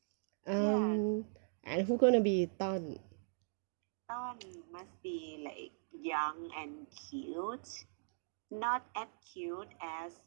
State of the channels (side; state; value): left; silent; digital silence